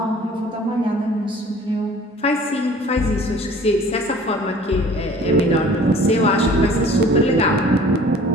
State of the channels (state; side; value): normal; both; correlation 0.49